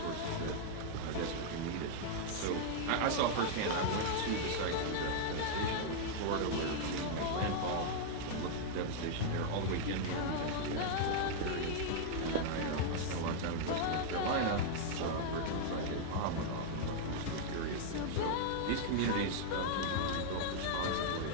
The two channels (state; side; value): different; both; correlation -0.01